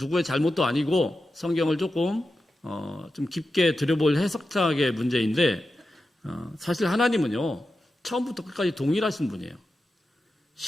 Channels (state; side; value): normal; both; correlation 0.91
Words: 잘못도 아니고 성경을 조금 좀 깊게 들여볼 해석학의 문제인데 사실 하나님은요 처음부터 끝까지 동일하신 분이에요.